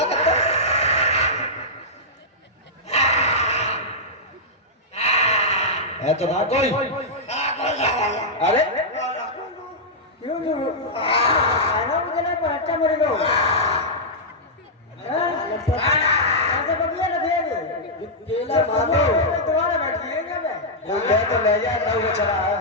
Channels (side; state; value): both; normal; correlation -0.09